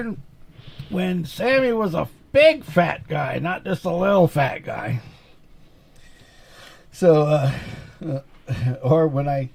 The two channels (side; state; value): both; identical; correlation 1.00